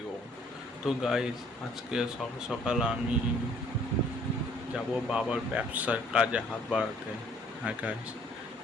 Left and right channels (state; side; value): normal; both; correlation 0.60